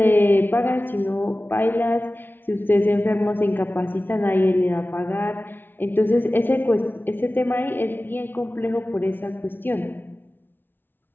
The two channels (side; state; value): right; late; 0.099 ms